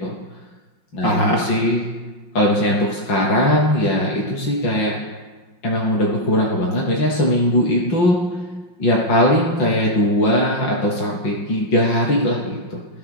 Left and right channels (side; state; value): right; late; 5.5 ms